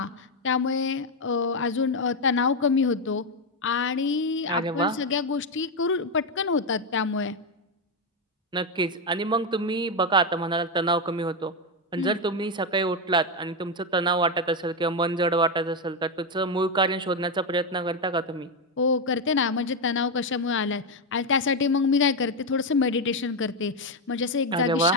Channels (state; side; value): normal; both; correlation 0.06